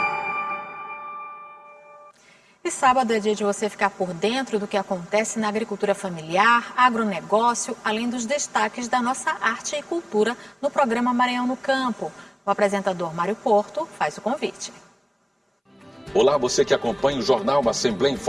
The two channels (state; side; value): identical; both; correlation 1.00